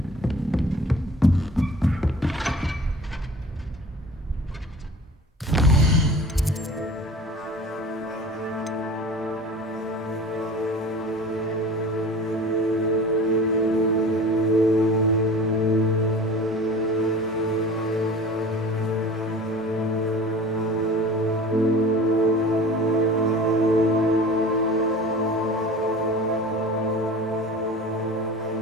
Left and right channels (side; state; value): both; normal; correlation 0.40